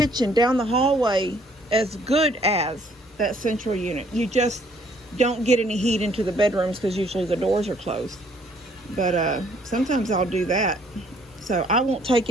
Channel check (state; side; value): normal; both; correlation 0.63